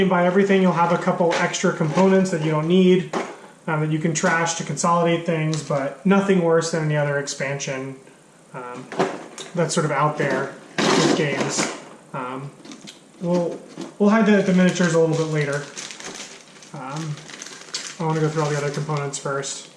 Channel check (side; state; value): both; identical; correlation 1.00